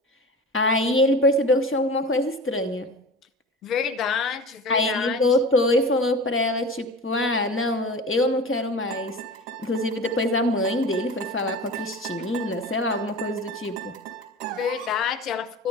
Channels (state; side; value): normal; both; correlation 0.34